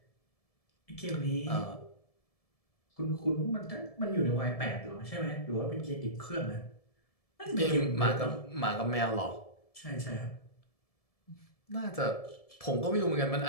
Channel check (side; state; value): right; late; 1.7 ms